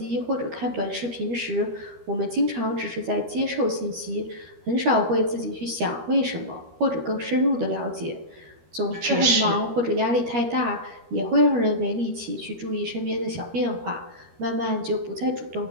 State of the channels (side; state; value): left; late; 13 ms